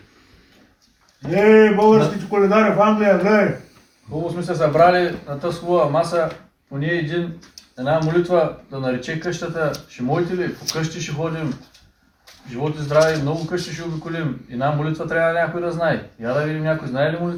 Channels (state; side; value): identical; both; correlation 1.00